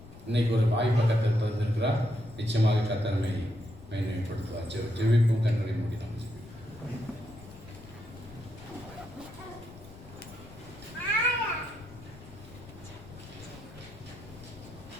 இன்னைக்கு ஒரு வாய்ப்பை கர்த்தர் தந்திருக்கிறார். நிச்சயமாக கர்த்தர் மேன்மைப்படுத்துவார். ஜெபிப்போம். கண்களை மூடி நாம்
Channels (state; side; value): noise; left; rumble, 18 dB below the sound